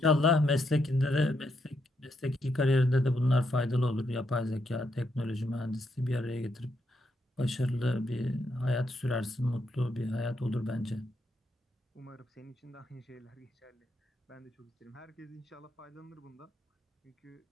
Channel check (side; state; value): both; normal; correlation 0.79